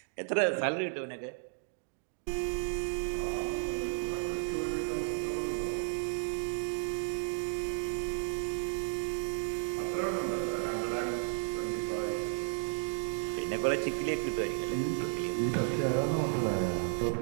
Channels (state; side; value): silent; left; digital silence